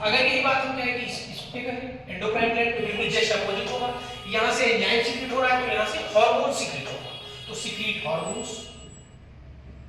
यही बात हम कहें कि इस पे करें एंडोक्राइन ग्लैंड तो बिल्कुल जस्ट अपोजिट होगा, यहां से एंजाइम सीक्रेट हो रहा है तो यहां से हार्मोन सीक्रेट होगा। तो secret hormones,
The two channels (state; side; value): identical; both; correlation 1.00